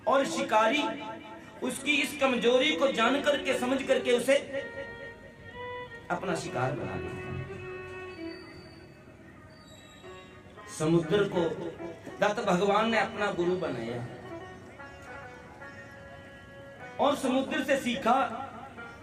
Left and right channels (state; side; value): identical; both; correlation 1.00